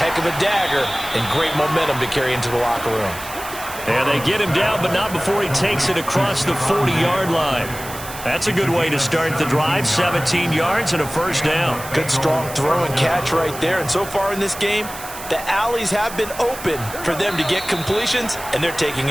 of a dagger and great momentum to carry into the locker room. And they get him down, but not before he takes it across the 40-yard line. That's a good way to start the drive. 17 yards and a first down. Good strong throw and catch right there. And so far in this game, The alleys have been open for them to get completions, and they're taking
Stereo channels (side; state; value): right; noise; hiss, 12 dB below the sound